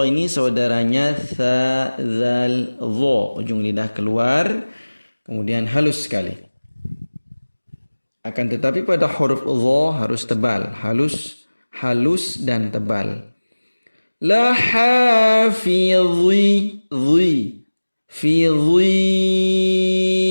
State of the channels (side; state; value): both; inverted; correlation -1.00